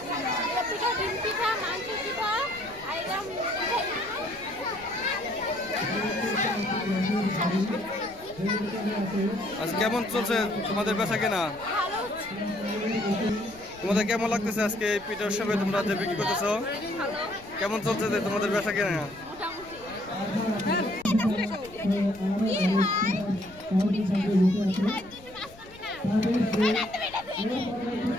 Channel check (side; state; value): left; noise; rumble, 22 dB below the sound